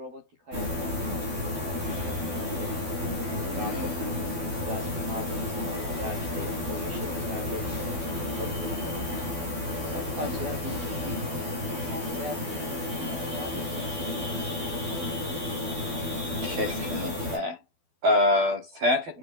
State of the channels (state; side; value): late; left; 12 ms